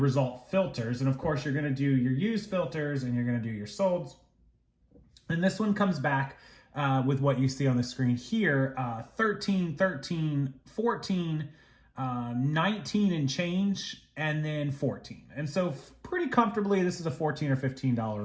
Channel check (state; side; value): identical; both; correlation 1.00